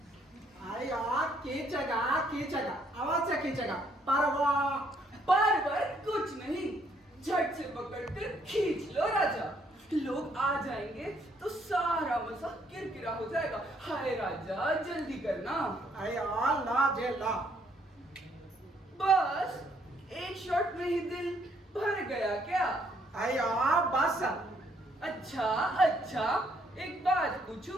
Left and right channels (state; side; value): normal; both; correlation 0.69